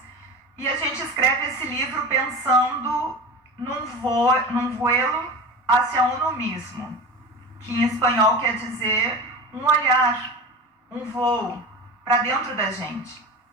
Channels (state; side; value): normal; both; correlation 0.30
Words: E a gente escreve esse livro pensando num vuelo hacia uno mismo, que em espanhol quer dizer um olhar, um voo para dentro da gente,